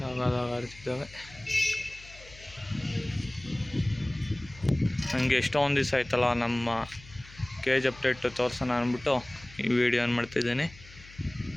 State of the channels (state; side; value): noise; left; hum, 20 dB below the sound